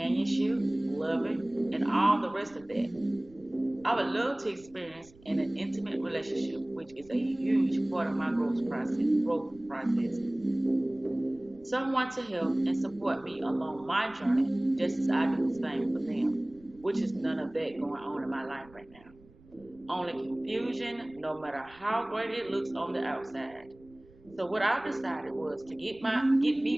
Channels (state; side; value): noise; right; rumble, 25 dB below the sound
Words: loving, and all the rest of that. I would love to experience in an intimate relationship, which is a huge part of my growth process. Someone to help and support me along my journey, just as I do the same for them, which is none of that going on in my life right now. Only confusion, no matter how great it looks on the outside. So what I decided was to get